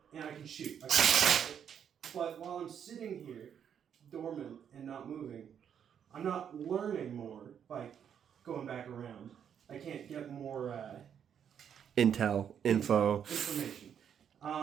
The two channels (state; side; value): quieter; left; 8.4 dB